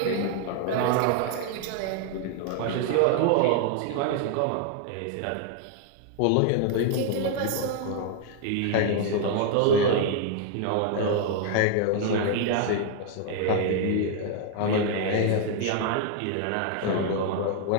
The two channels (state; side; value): different; both; correlation 0.00